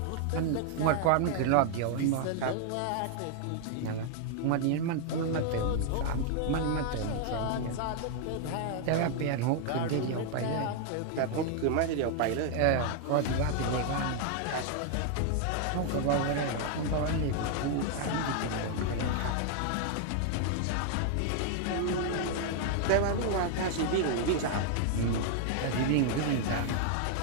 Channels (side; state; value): both; different; correlation 0.00